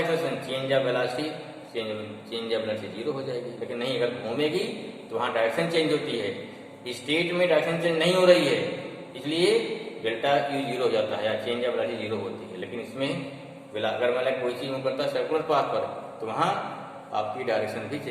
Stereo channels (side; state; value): both; identical; correlation 1.00